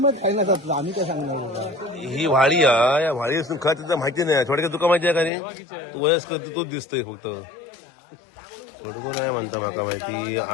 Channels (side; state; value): right; drops out; at 5.3 s